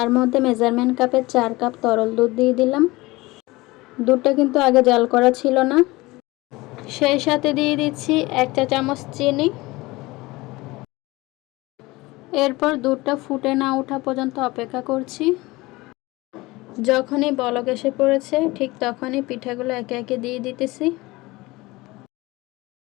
মধ্যে মেজারমেন্ট কাপের 4 কাপ তরল দুধ দিয়ে দিলাম। দুধটা কিন্তু আগে জাল করা ছিল না। সেই সাথে দিয়ে দিচ্ছি 1 চা চামচ চিনি। এরপর দুধটা ফুটে না ওঠা পর্যন্ত অপেক্ষা করছি। যখনই বলক এসে পড়েছে ঠিক তখনই পিঠাগুলো একে একে দিয়ে দিতেছি।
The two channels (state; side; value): quieter; right; 21.1 dB